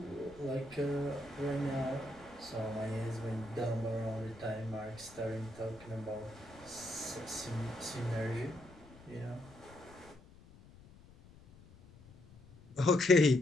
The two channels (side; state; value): left; noise; rumble, 22 dB below the sound